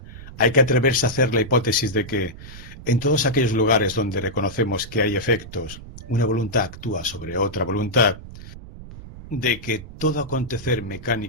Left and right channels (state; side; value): noise; right; rumble, 15 dB below the sound